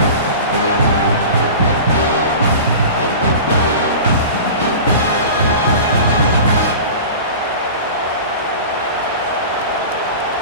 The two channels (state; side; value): inverted; both; correlation -0.35